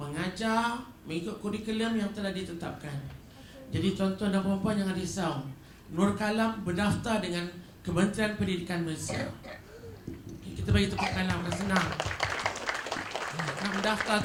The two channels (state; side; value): identical; both; correlation 1.00